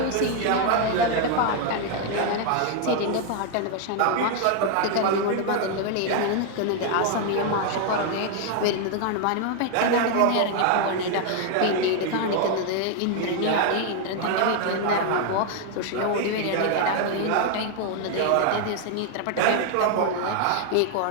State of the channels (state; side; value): different; both; correlation 0.00